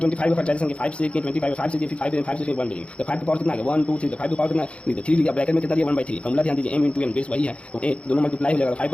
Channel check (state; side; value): late; right; 0.060 ms